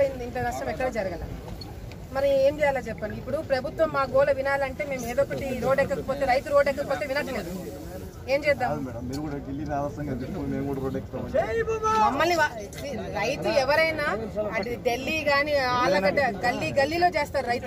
ఇంత నష్టం ఎక్కడ జరగల. మరి ఏం చేయాలో చెప్పండి. ఇప్పుడు ప్రభుత్వం మా గోల వినాలంటే మేము ఏదో ఒకటి రోడ్ ఎక్కకపోతే, రైతు రోడ్ ఎక్కకపోతే వినట్లేదు. ఏం చేద్దాం? మమ్మల్ని రైతు ఎవరైనా అది ఢిల్లీ గాని ఆలగడ్డ గల్లీలో చేస్తారు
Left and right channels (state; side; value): identical; both; correlation 1.00